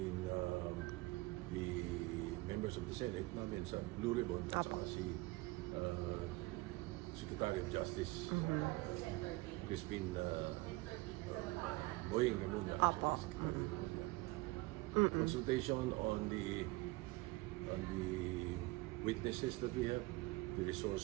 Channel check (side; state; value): left; quieter; 22.0 dB